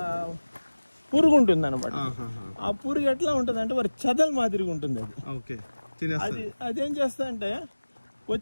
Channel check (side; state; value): both; inverted; correlation -1.00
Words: పురుగు ఉంటుంది అనమాట. ఆ పురుగు ఎట్లా ఉంటుంది అంటే వారి చెదల మాదిరిగా ఉంటుంది. అది అదేం చేస్తా అంటే